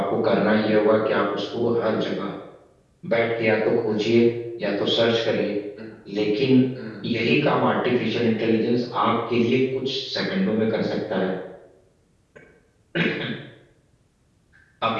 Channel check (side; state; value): both; identical; correlation 1.00